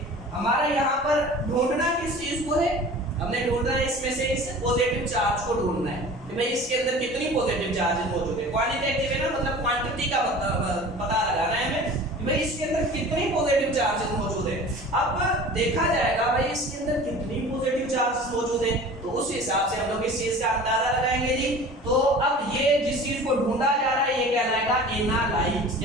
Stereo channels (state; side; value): normal; both; correlation 0.41